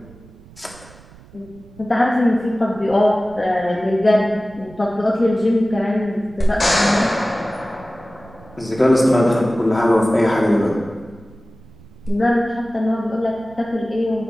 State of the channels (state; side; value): noise; right; rumble, 23 dB below the sound